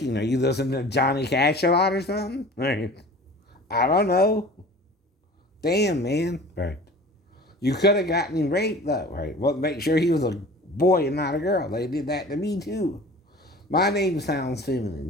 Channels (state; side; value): normal; both; correlation 0.42